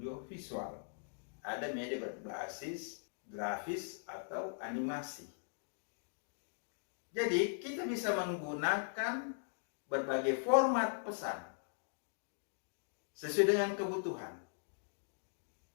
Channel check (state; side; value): silent; right; digital silence